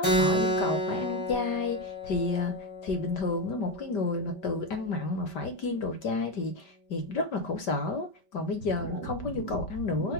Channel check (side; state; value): right; late; 5.1 ms